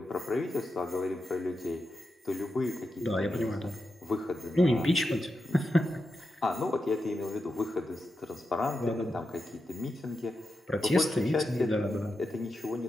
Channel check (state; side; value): normal; both; correlation 0.88